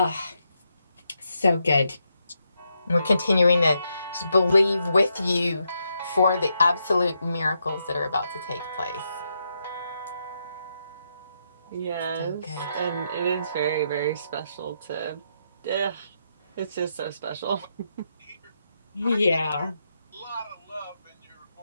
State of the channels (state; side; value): inverted; both; correlation -0.81